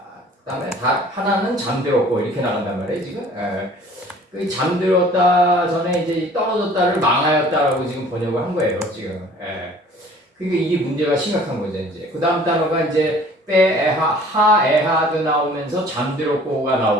그 다음에 하나는 잠들었고 이렇게 나간단 말이에요. 지금 그 잠들었다 전에 이제 떨어졌다를 망하였다라고 지금 번역을 한 거예요. 지금 그러니까 이게 문제가 심각한 거죠. 이제 그 다음 단어가 이제 하에하드 나오면서 잠들었고가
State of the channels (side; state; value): both; normal; correlation 0.51